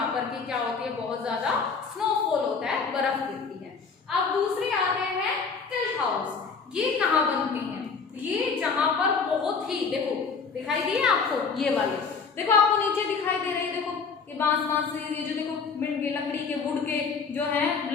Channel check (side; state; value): right; quieter; 5.2 dB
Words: पर की क्या होती है, बहुत ज्यादा स्नोफॉल होता है, बर्फ गिरती है। अब दूसरे आते हैं टिल्ट हाउस। ये कहाँ बनते हैं, ये जहां पर बहुत ही देखो दिखाई दिए आपको, ये वाले देखो आपको नीचे दिखाई दे रही है, देखो ये बांस ये जो देखो लकड़ी के वुड के जो है